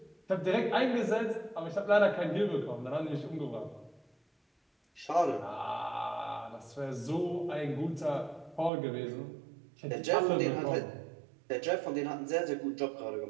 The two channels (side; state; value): left; drops out; at 8.7 s